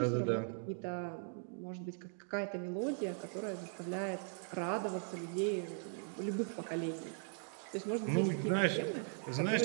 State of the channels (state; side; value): silent; left; 52 dB below the other